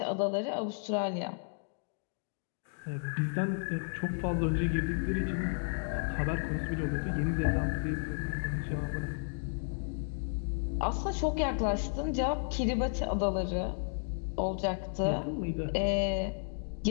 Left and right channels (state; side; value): silent; right; digital silence